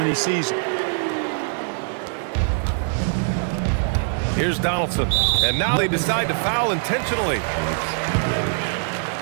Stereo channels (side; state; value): left; silent; digital silence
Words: he sees them. Here's Donaldson. And now they decide to foul intentionally.